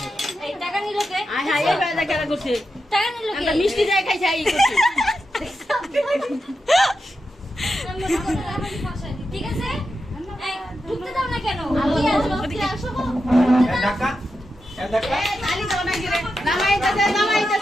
এই টাকা নিল কে? আয় হায় এই বেলা কেন করছে টাকা নিল কে? একটা মিষ্টি যায় খাইছে এই করছে আমি মনে করি আমার ফাঁসাইনি। ঠিক আছে? এই, ঢুকতে দাও না কেন? কি আসবো? কি আসবো? ঢাকা ঢাকা খালি তো না গিরে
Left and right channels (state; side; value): normal; both; correlation 0.88